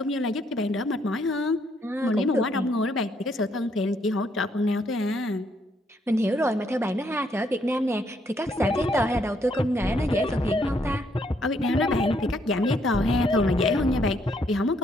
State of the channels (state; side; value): normal; both; correlation 0.72